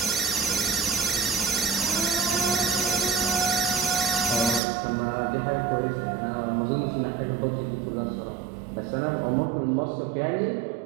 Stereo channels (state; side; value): drops out; left; at 4.6 s